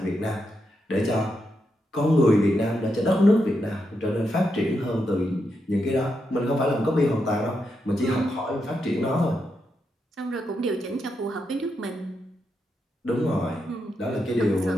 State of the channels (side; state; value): both; normal; correlation 0.83